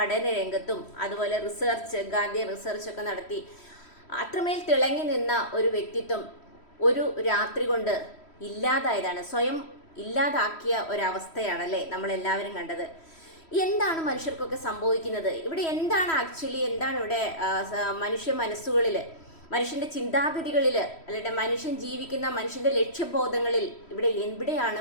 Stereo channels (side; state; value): right; late; 3.1 ms